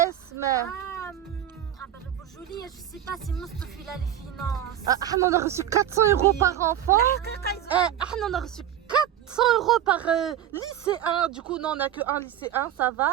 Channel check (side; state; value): left; quieter; 10.8 dB